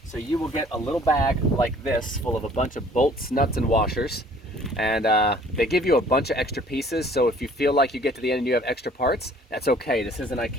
So you will get a little bag like this full of a bunch of bolts, nuts, and washers. And they give you a bunch of extra pieces, so if you feel like you get to the end and you have extra parts, that's okay. This isn't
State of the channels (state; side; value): normal; both; correlation 0.54